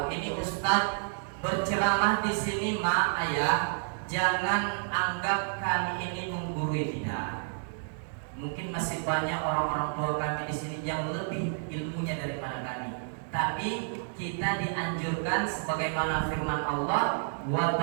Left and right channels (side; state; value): left; silent; digital silence